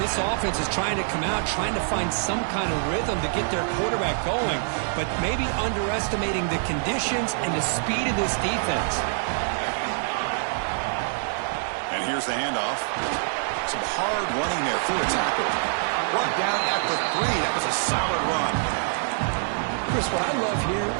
this offense is trying to come out, trying to find some kind of rhythm to get their quarterback going, but maybe underestimating the conditions and the speed of this defense. And here's the handoff. Some hard running there through a tackle. Brought down at the 3. That was a solid run. Chris, what I love here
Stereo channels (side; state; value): left; silent; digital silence